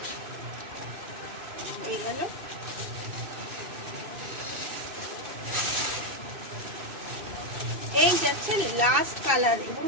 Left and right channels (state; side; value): late; left; 2.6 ms